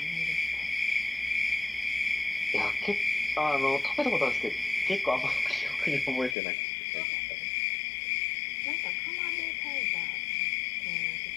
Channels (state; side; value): drops out; right; at 6.4 s